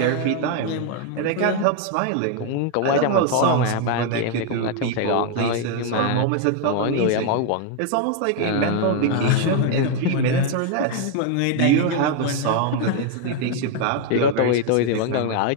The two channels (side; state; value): both; different; correlation 0.00